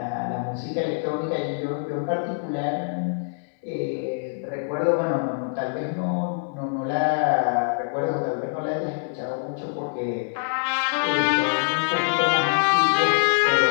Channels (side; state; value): right; silent; digital silence